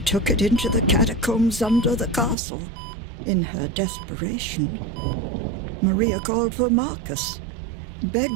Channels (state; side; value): drops out; left; at 2.4 s